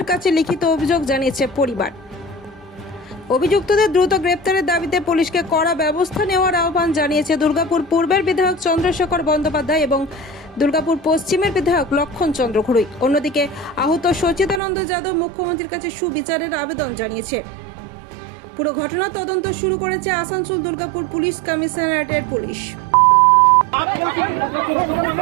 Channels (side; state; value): left; drops out; at 14.6 s